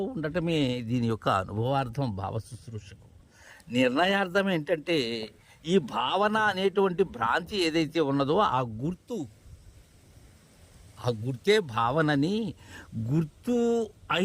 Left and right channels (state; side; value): identical; both; correlation 1.00